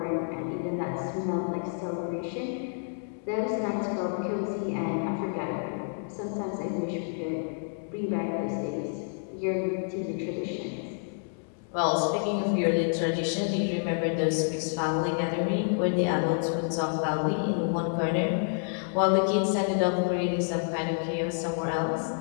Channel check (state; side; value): silent; right; digital silence